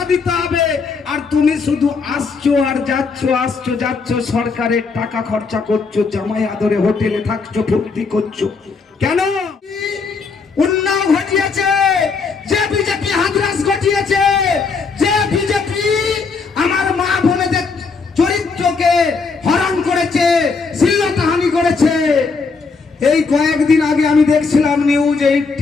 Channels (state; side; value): quieter; right; 4.7 dB